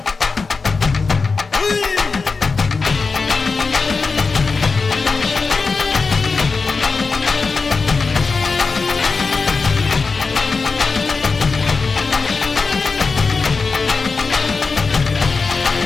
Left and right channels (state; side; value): quieter; right; 4.4 dB